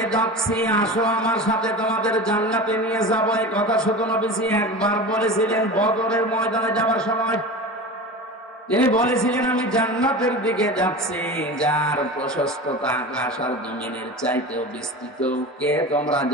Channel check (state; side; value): normal; both; correlation 0.31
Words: যাচ্ছি, আসো আমার সাথে, তোমাদের জান্নাতে নিয়ে যাবো। এই কথা শুধু নবীজি একবার বলেছিলেন বদরের ময়দানে যাওয়ার সময়। তিনি বলেছিলেন, আমি জান্নাতের দিকে যাচ্ছি, যার প্রশস্ততা আকাশ আর জমিনের চাইতেও বিস্তৃত। কে তোমরা